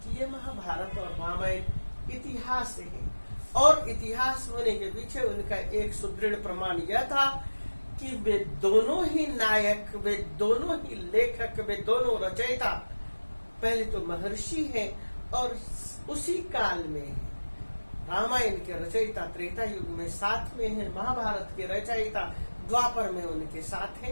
कि ये महाभारत और रामायण इतिहास है। और इतिहास होने के पीछे उनका एक सुदृढ़ प्रमाण यह था कि वे दोनों ही नायक, वे दोनों ही लेखक, वे दोनों रचयिता पहले तो महर्षि हैं और उसी काल में है। रामायण के रचयिता त्रेता युग में साथ में है, महाभारत के रचयिता द्वापर में उनके साथ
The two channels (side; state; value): both; inverted; correlation -1.00